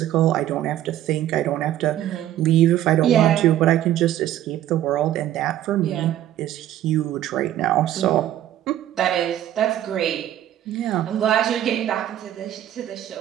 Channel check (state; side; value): quieter; left; 12.3 dB